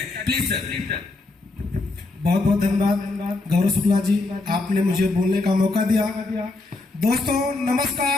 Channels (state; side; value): quieter; right; 3.3 dB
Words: Please sir. बहुत बहुत धन्यवाद गौरव शुक्ला जी, आपने मुझे बोलने का मौका दिया। दोस्तों